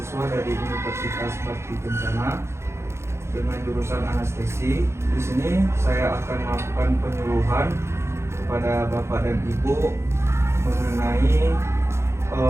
dari Universitas Bakti Kencana dengan jurusan anestesi. Di sini saya akan melakukan penyuluhan kepada Bapak dan Ibu mengenai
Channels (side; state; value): left; late; 0.13 ms